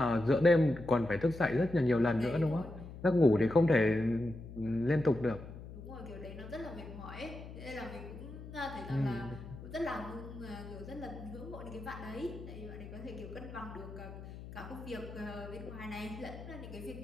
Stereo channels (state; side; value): noise; left; hum, 13 dB below the sound